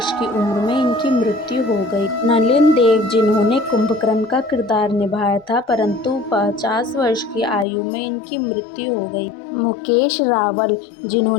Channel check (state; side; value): drops out; right; at 7.7 s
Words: की उम्र में इनकी मृत्यु हो गई। नलिन देव, जिन्होंने कुंभकर्ण का किरदार निभाया था, परंतु 50 वर्ष की आयु में इनकी मृत्यु हो गई। मुकेश रावल,